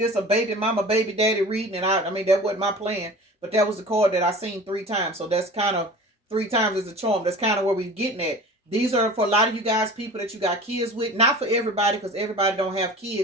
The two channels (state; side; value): normal; both; correlation 0.39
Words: a baby mama, baby daddy reading, and I mean, that wasn't my plan, but that was the card that I seen 3 times. So that's kind of 3 times as a charm. That's kind of where we're getting at. These are for a lot of you guys, people that you got kids with. Not for everybody, because everybody don't have